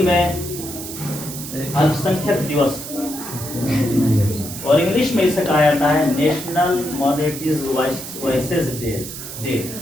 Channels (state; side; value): noise; right; hiss, 10 dB below the sound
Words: में अल्पसंख्यक दिवस और इंग्लिश में इसे कहा जाता है नेशनल माइनॉरिटीज वॉइसेस डे।